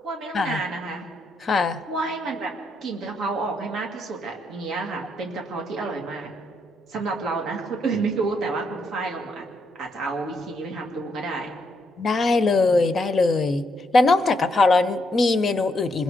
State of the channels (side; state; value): both; normal; correlation 0.77